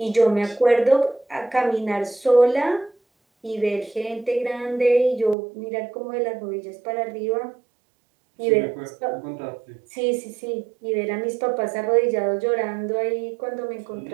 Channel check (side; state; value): left; drops out; at 5.4 s